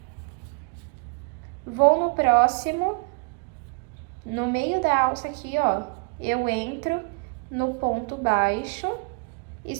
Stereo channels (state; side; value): quieter; left; 34.3 dB